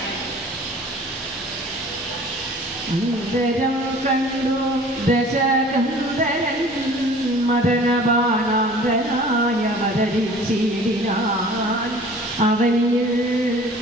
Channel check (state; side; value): normal; both; correlation 0.47